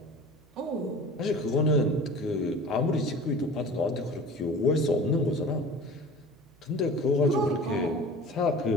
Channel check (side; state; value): right; noise; hum, 29 dB below the sound